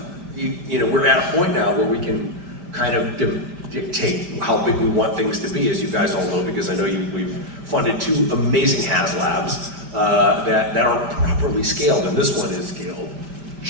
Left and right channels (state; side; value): late; left; 5.1 ms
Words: you know, we're at a point now where we can kind of dictate how big we want things to be, as you guys all know, because I know we've funded 2 amazing HasLabs that aren't properly scaled, and this one is scaled